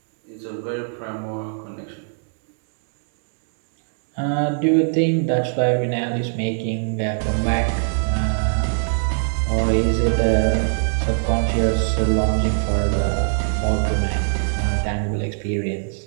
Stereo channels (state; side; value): silent; left; digital silence